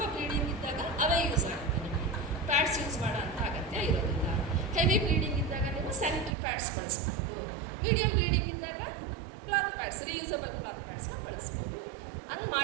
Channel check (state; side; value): drops out; left; at 6.4 s